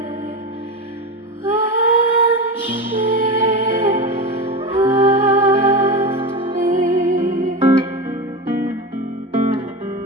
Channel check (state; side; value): normal; both; correlation 0.22